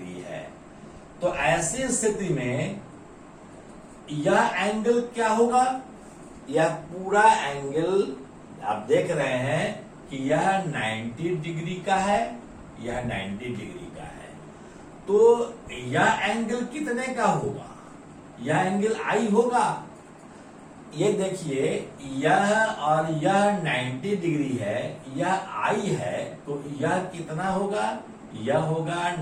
है। तो ऐसी स्थिति में यह एंगल क्या होगा? यह पूरा एंगल आप देख रहे हैं कि यह 90 डिग्री का है, यह 90 डिग्री का है। तो यह एंगल कितने का होगा? यह एंगल I होगा। ये देखिए, यह और यह 90 डिग्री है, यह I है, तो यह कितना होगा? यह होगा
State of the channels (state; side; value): identical; both; correlation 1.00